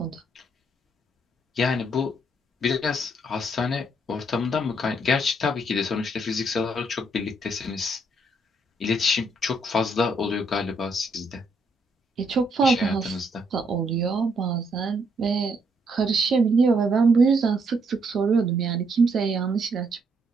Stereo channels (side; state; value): both; normal; correlation 0.73